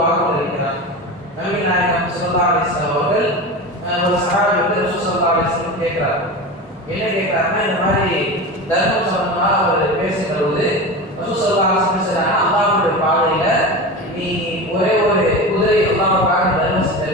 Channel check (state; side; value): normal; both; correlation 0.27